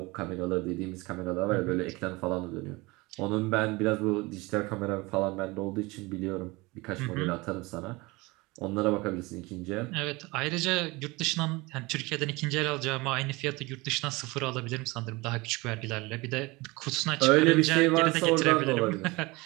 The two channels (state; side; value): quieter; left; 23.4 dB